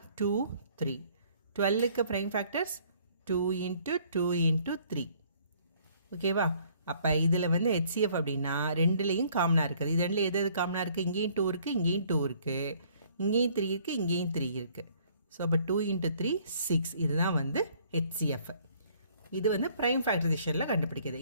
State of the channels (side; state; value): both; inverted; correlation -0.60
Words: 2 3. 12க்கு ப்ரைம் ஃபேக்டர்ஸ் 2 × 2 × 3. ஓகேவா? அப்போ இதில் வந்து HCF அப்படின்னா ரெண்டுலேயும் காமனாக இருக்குது. இது ரெண்டில் எது காமனாக இருக்குது? இங்கேயும் 2 இருக்குது, இங்கேயும் 2 இருக்குது, இங்கேயும் 3 இருக்குது, இங்கேயும் 3 இருக்குது. ஸோ அப்போ 2 × 3 6. இதுதான் வந்து HCF. இது வந்து ப்ரைம் ஃபேக்டரைசேஷனில் கண்டுபிடிக்கிறது.